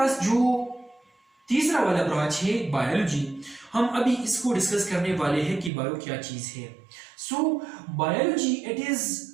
जो तीसरा वाला ब्रांच है बायोलॉजी, हम अभी इसको डिस्कस करने वाले हैं कि बायो क्या चीज है। So biology it is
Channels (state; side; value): drops out; left; at 5.7 s